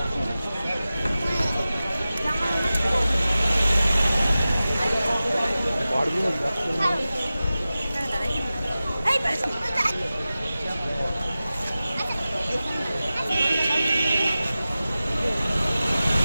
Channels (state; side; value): inverted; both; correlation -0.95